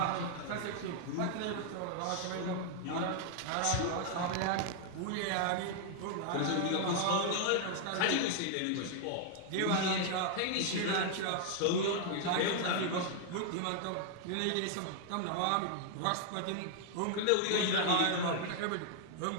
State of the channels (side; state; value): both; different; correlation 0.00